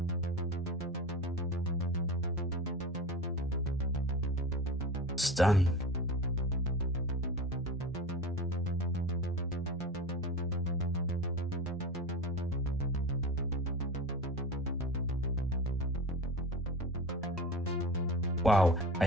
Stunning. Wow, I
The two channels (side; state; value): both; normal; correlation 0.31